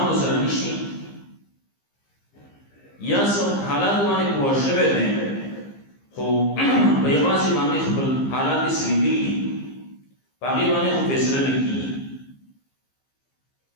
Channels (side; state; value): right; late; 15 ms